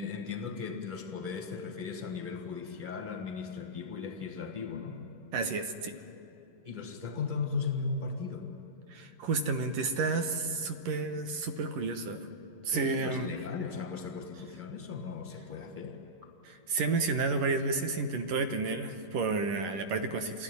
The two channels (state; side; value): late; left; 11 ms